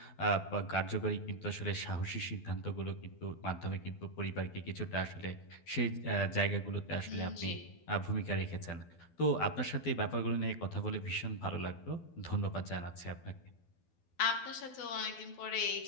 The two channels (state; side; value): late; right; 12 ms